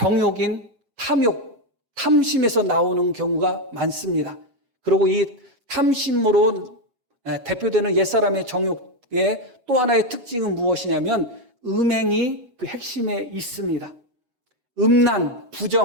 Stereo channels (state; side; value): late; left; 7.7 ms